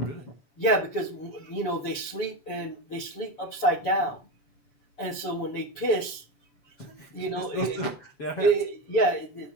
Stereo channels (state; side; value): late; right; 7.0 ms